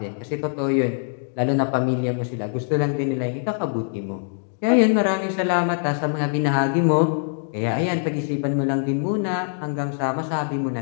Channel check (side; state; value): right; silent; digital silence